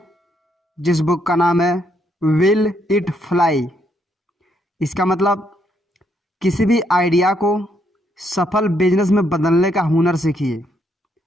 जिस बुक का नाम है विल इट फ्लाई। इसका मतलब किसी भी आइडिया को सफल बिजनेस में बदलने का हुनर सीखिए।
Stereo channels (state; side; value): normal; both; correlation 0.74